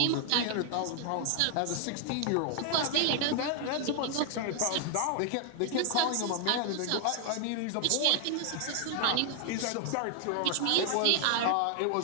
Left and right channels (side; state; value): both; different; correlation 0.00